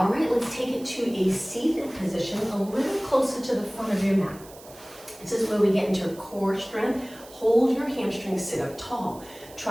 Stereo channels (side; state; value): right; noise; hiss, 21 dB below the sound